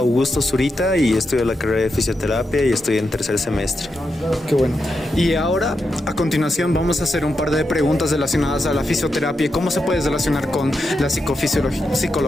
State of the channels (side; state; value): both; normal; correlation 0.86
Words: Zurita y estudio la carrera de fisioterapia y estoy en tercer semestre. Qué bueno. Y ahora, a continuación, vamos a hacer un par de preguntas relacionadas a la fisioterapia y cómo se puede relacionar con la